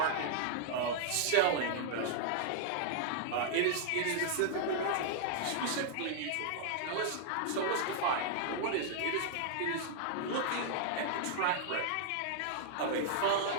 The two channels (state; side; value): different; both; correlation -0.01